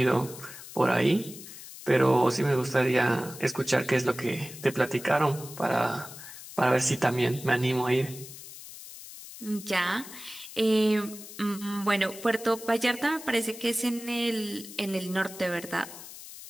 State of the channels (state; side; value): noise; left; hiss, 14 dB below the sound